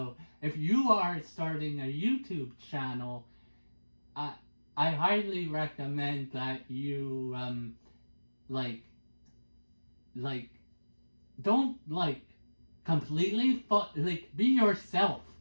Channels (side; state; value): both; inverted; correlation -1.00